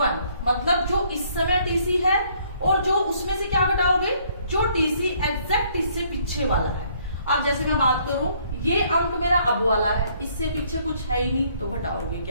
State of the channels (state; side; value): inverted; both; correlation -0.65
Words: मतलब जो इस समय टीसी है और जो उसमें से क्या घटाओगे, जो टीसी एग्जैक्ट इससे पीछे वाला है। अब जैसे मैं बात करूं, ये अंक मेरा अब वाला है, इससे पीछे कुछ है ही नहीं, तो घटाओगे